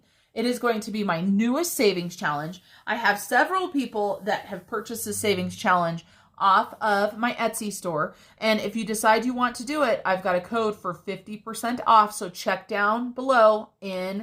It is going to be my newest savings challenge. I have several people that have purchased the savings challenge off of my Etsy store. And if you decide you want to do it, I've got a code for 50% off. So check down below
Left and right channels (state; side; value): identical; both; correlation 1.00